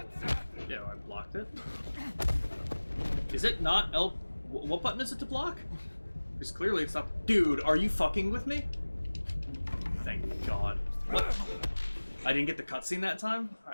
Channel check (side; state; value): both; inverted; correlation -1.00